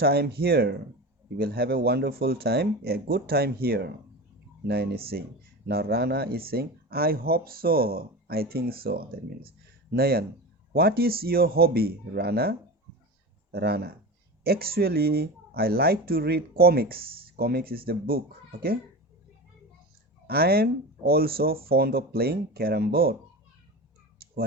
here. You will have a wonderful time, a good time here. Nayan is saying. Now Rana is saying, I hope so. I think so. That means Nayan, what is your hobby, Rana? Rana, actually, I like to read comics. Comics is the book. Okay. I am also fond of playing carom board.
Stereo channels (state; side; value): normal; both; correlation 0.28